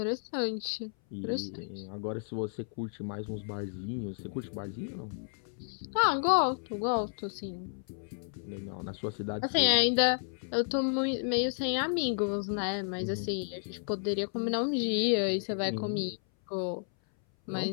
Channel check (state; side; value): silent; right; 56 dB below the other